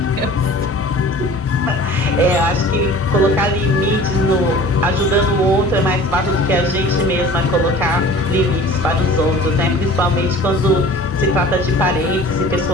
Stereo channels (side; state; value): both; normal; correlation 0.44